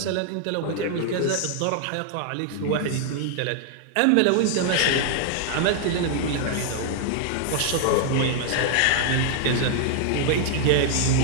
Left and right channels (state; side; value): different; both; correlation 0.00